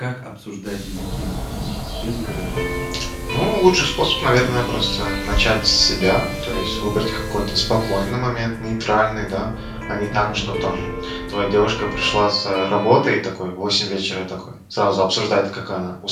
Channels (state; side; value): identical; both; correlation 1.00